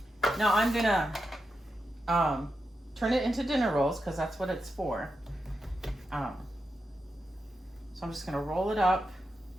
Now I'm gonna turn it into dinner rolls because that's what it's for. So I'm just gonna roll it up.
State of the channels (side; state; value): both; normal; correlation 0.87